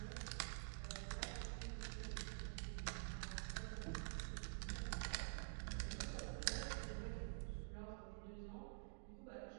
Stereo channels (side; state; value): left; silent; digital silence